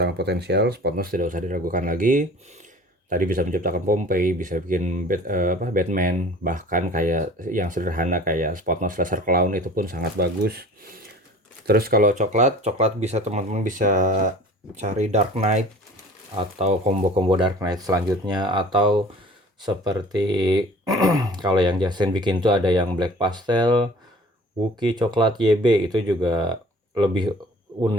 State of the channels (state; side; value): normal; both; correlation 0.46